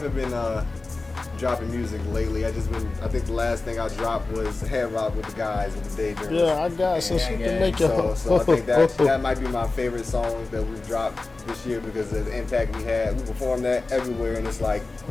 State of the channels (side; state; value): right; quieter; 3.5 dB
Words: been dropping music lately. I think the last thing I dropped was Head Rock with the guys with the Daydreamers. Yeah, I got some shit to make it. So I think that might be my favorite song that we've dropped this year because of the impact we had. We performed that everywhere, and it's like